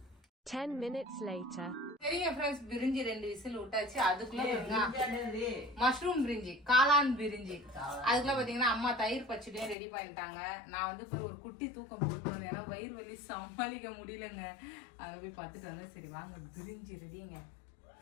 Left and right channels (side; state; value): right; drops out; at 9.8 s